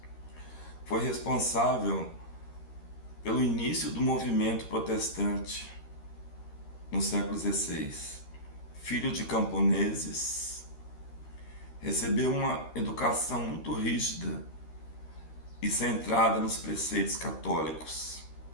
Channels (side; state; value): right; late; 13 ms